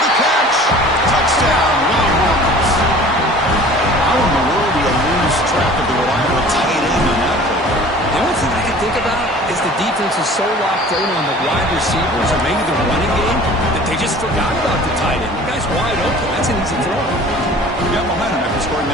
the catch. Touchdown, Longhorns. How in the world do you lose track of the reliable tight end on that play? The only thing I can think about is the defense is so locked in on the wide receivers or maybe the running game that they just forgot about the tight end. The guy's wide open. That's an easy throw. You got momentum after scoring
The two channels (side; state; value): both; normal; correlation 0.46